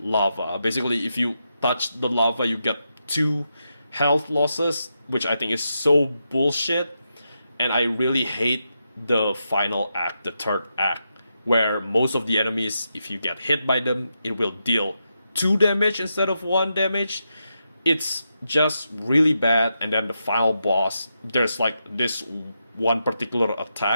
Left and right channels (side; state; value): both; inverted; correlation -0.85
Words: lava. Basically, if you touch the lava, you get 2 health losses, which I think is so bullshit. And I really hate the final act, the third act, where most of the enemies, if you get hit by them, it will deal 2 damage instead of 1 damage. It's just really bad. And then the final boss, there's like this one particular